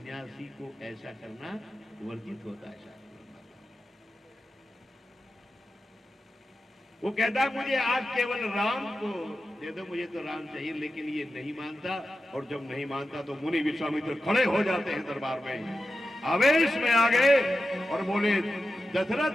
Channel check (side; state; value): both; normal; correlation 0.91